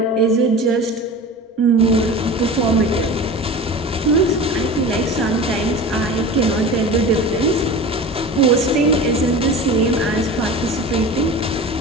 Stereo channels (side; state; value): both; normal; correlation 0.34